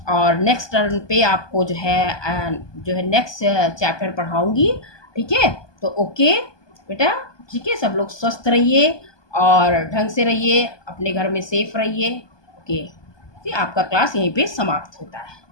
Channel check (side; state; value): right; late; 1.2 ms